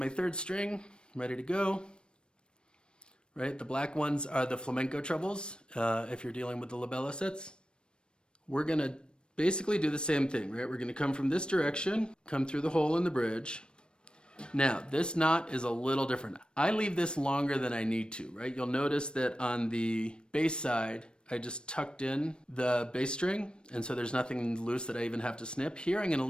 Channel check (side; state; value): right; late; 0.054 ms